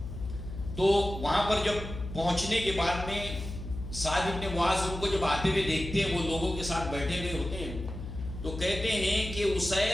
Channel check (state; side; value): noise; left; hum, 9 dB below the sound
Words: تو وہاں پر جب پہنچنے کے بعد میں سعد بن معاذ ان کو جب آتے ہوئے دیکھتے ہیں، وہ لوگوں کے ساتھ بیٹھے ہوئے ہوتے ہیں، تو کہتے ہیں کہ